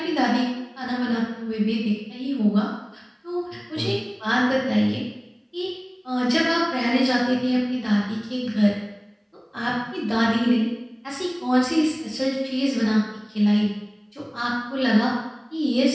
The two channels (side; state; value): both; identical; correlation 1.00